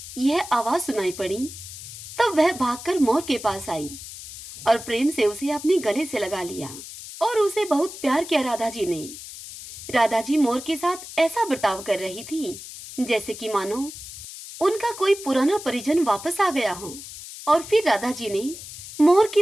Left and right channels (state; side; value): noise; left; hiss, 13 dB below the sound